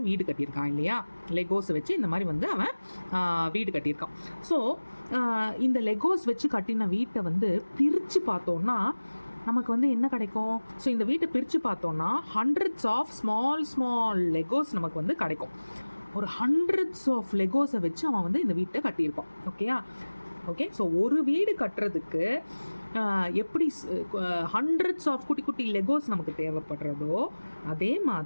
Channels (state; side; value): inverted; both; correlation -1.00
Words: வீடு கட்டியிருக்கான் இல்லையா, லெகோஸை வச்சு இந்த மாதிரி வந்து அவன் வீடு கட்டியிருக்கான். ஸோ இந்த லெகோஸ் வச்சு கட்டின வீட்டை வந்து பிரித்து பார்த்தோன்னா நமக்கு வந்து என்ன கிடைக்கும்? ஸோ இந்த வீட்டை பிரித்து பார்த்தோன்னா ஹண்ட்ரட்ஸ் ஆஃப் ஸ்மால் லெகோஸ் நமக்கு வந்து கிடைக்கும். ஒரு ஹண்ட்ரட்ஸ் ஆஃப் லெகோஸை வச்சு அவன் வந்து இந்த வீட்டை கட்டியிருப்பான். ஓகே. ஸோ ஒரு வீடு கட்டுறதுக்கு எப்படி ஹண்ட்ரட்ஸ் ஆஃப் குட்டி லெகோஸ் நமக்கு தேவைப்படுறதோ, அதே